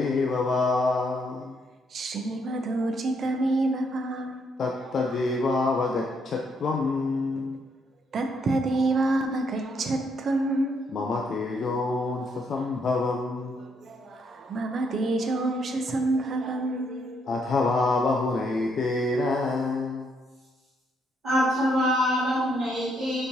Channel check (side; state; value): both; normal; correlation 0.73